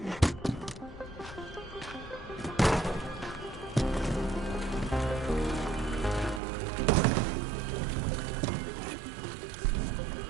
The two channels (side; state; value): left; drops out; at 6.4 s